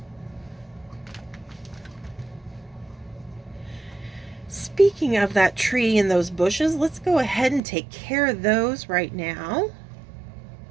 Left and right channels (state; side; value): drops out; left; at 7.6 s